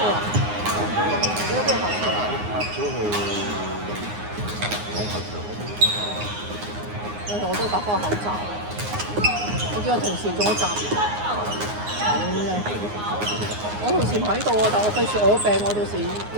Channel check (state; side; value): late; left; 9.6 ms